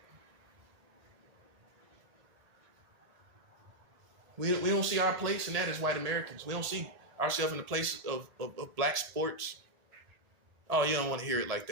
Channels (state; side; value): late; left; 1.7 ms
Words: We don't see our place in that as white Americans. We don't see ourselves in the place of black sports. Oh, you don't want to hear it like